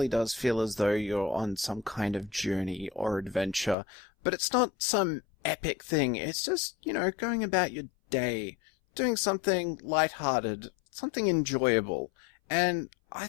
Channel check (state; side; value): drops out; right; at 3.8 s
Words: does feel as though you're on some kind of journey or adventure, but it's not some epic thing. It's just, you know, going about your day, doing something lighthearted, something enjoyable. And I